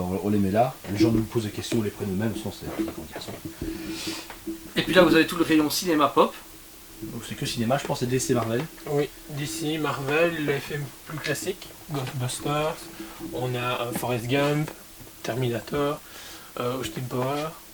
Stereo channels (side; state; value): both; identical; correlation 1.00